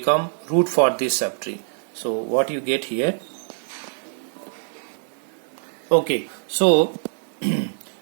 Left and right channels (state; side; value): silent; left; digital silence